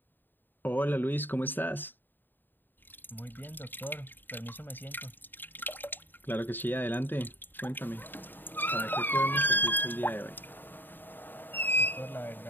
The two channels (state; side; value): late; right; 0.092 ms